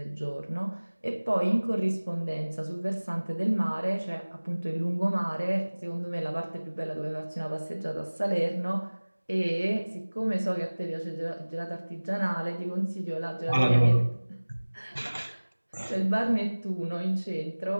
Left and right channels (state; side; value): inverted; both; correlation -1.00